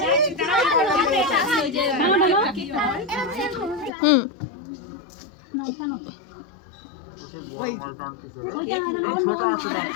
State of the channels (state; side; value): drops out; right; at 3.9 s